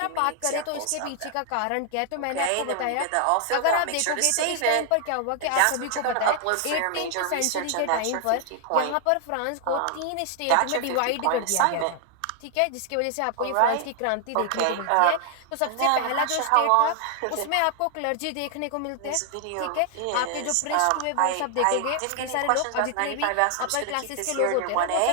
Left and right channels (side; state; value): both; different; correlation 0.00